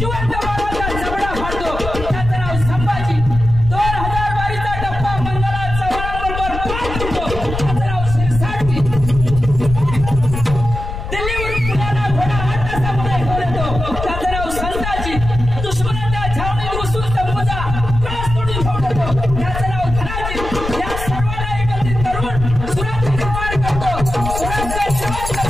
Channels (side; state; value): left; noise; rumble, 6 dB below the sound